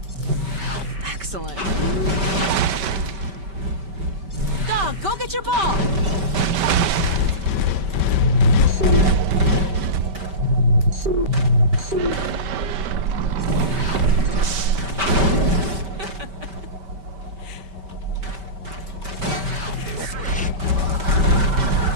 Excellent. Dog, go get your ball.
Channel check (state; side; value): late; left; 5.2 ms